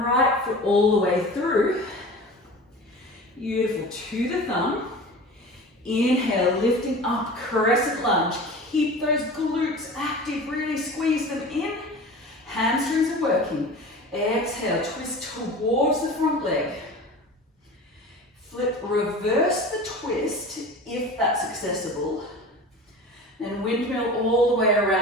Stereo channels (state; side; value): normal; both; correlation 0.36